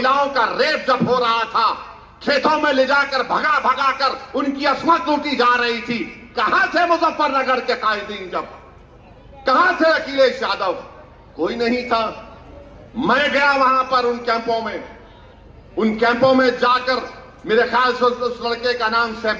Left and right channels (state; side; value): identical; both; correlation 1.00